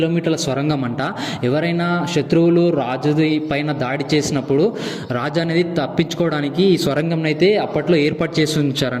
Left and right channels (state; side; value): identical; both; correlation 1.00